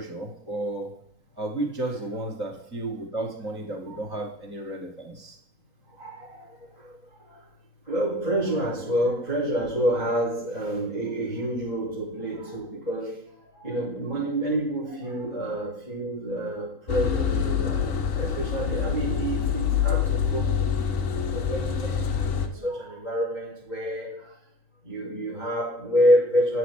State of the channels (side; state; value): right; late; 3.9 ms